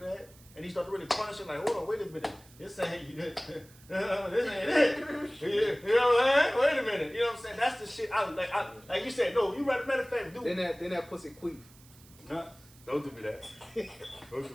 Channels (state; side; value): noise; right; hiss, 25 dB below the sound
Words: And you start to really punish it, like, hold on, wait a minute. This ain't it. This ain't it. You know what I'm saying? Wait a minute. You know what I'm saying? That's the shit I like you said, no, you right, matter of fact, do. Then that pussy queef. Huh? Don't do me that. Don't do